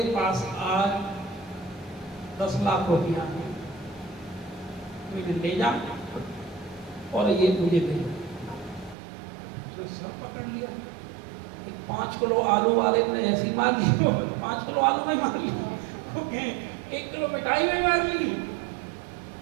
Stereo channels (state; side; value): drops out; left; at 9.0 s